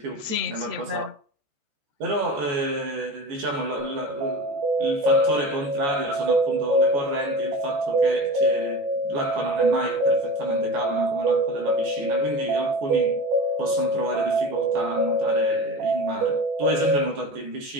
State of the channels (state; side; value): late; left; 14 ms